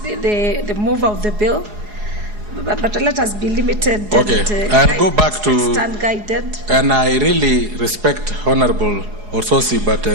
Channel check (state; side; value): late; left; 4.8 ms